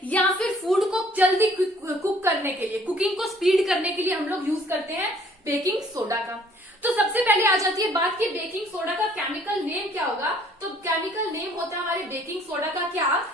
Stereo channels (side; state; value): both; normal; correlation 0.59